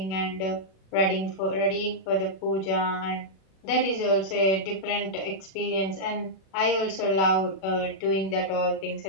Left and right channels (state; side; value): late; right; 37 ms